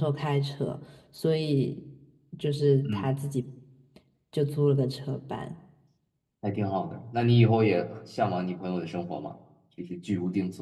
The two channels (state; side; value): identical; both; correlation 1.00